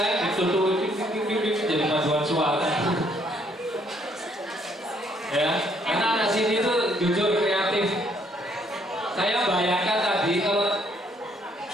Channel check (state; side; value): normal; both; correlation 0.68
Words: ditutup jadi paduan suara. Ya, karena anak sini tuh jujur kreatif. Saya bayangkan tadi kalau